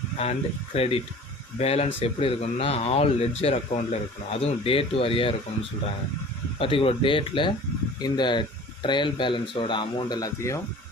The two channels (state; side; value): normal; both; correlation 0.44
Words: அண்ட் கிரெடிட் பேலன்ஸ் எப்படி இருக்கணும்னா ஆல் லெட்ஜர் அக்கௌண்ட்டில் இருக்கணும். அதுவும் டேட் வாரியாக இருக்கணும்னு சொல்கிறாங்க. பர்டிகுலர் டேட்டில் இந்த ட்ரையல் பேலன்ஸோட அமௌண்ட் எல்லாத்தையும்